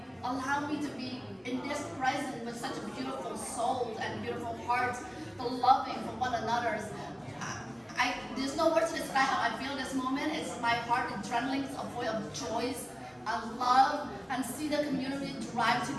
allowed me to be in this present with such a beautiful soul and beautiful heart, the loving for one another. There's no words to describe how I feel this moment. It's my heart adrenaline, it's a voice of joy and love, and see the community drive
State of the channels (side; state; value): both; identical; correlation 1.00